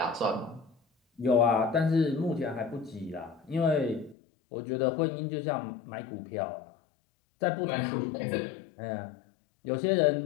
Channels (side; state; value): right; drops out; at 4.2 s